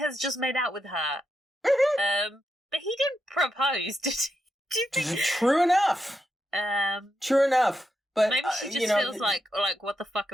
just made out with her. But he didn't propose, did he? Do you think? True enough. True enough. But maybe she just feels like, what the fuck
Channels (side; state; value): both; normal; correlation 0.84